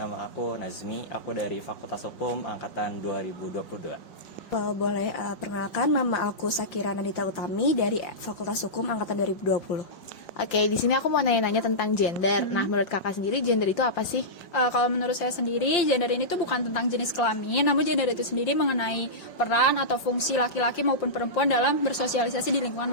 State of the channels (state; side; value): late; right; 5.7 ms